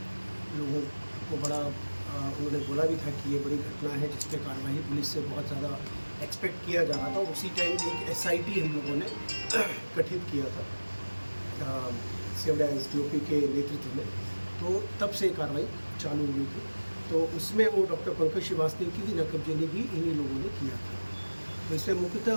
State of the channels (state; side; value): inverted; both; correlation -1.00